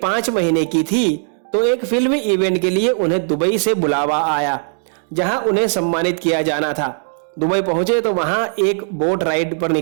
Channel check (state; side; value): silent; left; 60 dB below the other